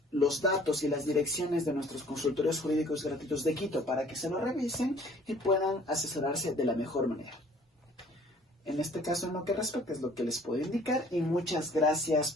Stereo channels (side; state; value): both; normal; correlation 0.54